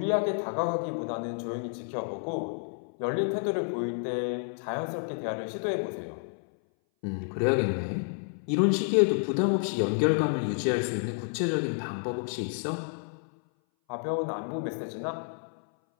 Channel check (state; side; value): silent; right; 58 dB below the other